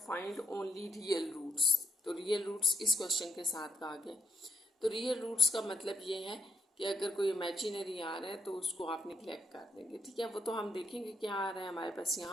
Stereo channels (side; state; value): both; normal; correlation 0.75